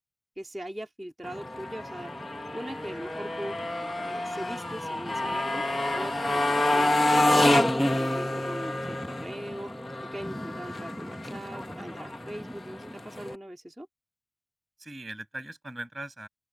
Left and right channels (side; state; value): both; normal; correlation 0.95